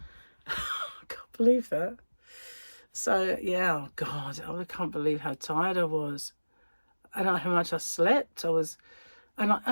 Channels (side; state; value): both; inverted; correlation -1.00